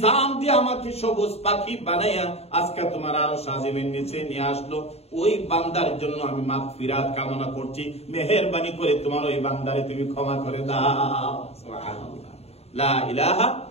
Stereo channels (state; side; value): late; right; 0.30 ms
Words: দিয়ে আমাকে সবুজ পাখি বানাইয়া আজকে তোমার আরশ আজিমের নিচে নিয়ে আসলো, ওই বান্দার জন্য আমি মাগফিরাত কামনা করছি, মেহেরবানি করে তোমার ওই বান্দারে তুমি ক্ষমা করে দাও। সুবহানাল্লাহ। লা ইলাহা